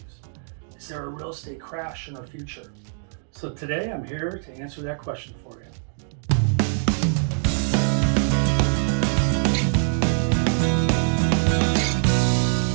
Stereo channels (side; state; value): left; silent; digital silence